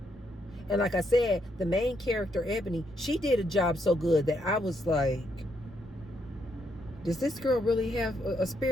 And like I said, the main character, Ebony, she did a job so good that I was like, does this girl really have a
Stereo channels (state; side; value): normal; both; correlation 0.76